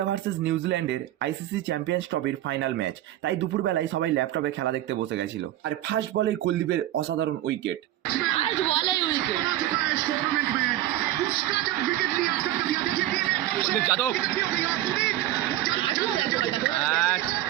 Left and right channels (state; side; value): quieter; left; 14.2 dB